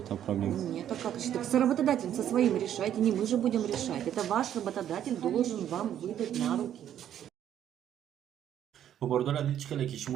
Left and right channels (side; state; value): left; quieter; 10.5 dB